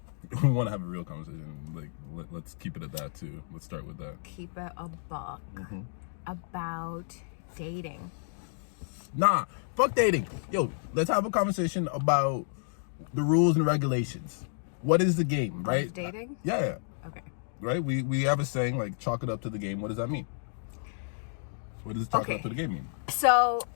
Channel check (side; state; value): right; silent; digital silence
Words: We want to have a real conversation. Like, let's keep it at that too. Let's start with that. Keep it a buck about dating. Nah, fuck dating. Yo, let's have a conversation about the rules and regulations. What is the game, right? Of dating? Yeah. Okay. Right? We have a saying like chalk it up to the game. What does that mean? What does chalk it up to the game mean? So